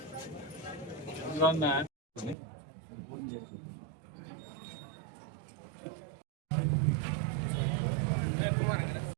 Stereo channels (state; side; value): drops out; left; at 2.4 s